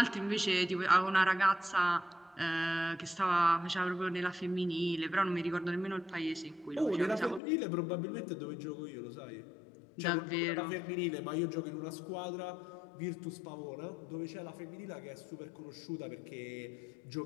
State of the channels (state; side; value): drops out; right; at 7.4 s